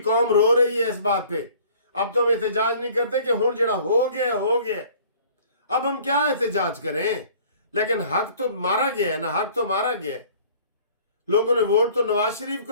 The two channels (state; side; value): inverted; both; correlation -0.52